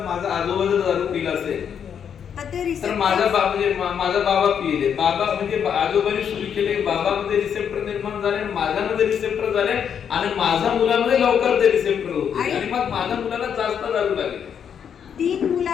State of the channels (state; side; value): quieter; right; 7.9 dB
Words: माझा आजोबा जर दारू पिला असेल तर माझा बाबा पिले, बाबा म्हणजे आजोबाने सुरू केले, बाबामध्ये रिसेप्टर निर्माण झाले, माझ्यामध्ये रिसेप्टर झाले, आणि माझ्या मुलामध्ये लवकर ते रिसेप्टर होते, आणि मग माझ्या मुलाला जास्त दारू लागली. 3